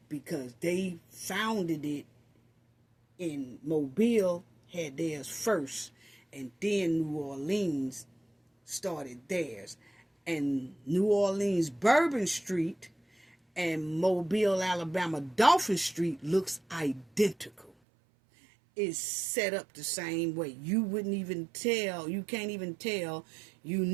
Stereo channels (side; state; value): left; drops out; at 17.7 s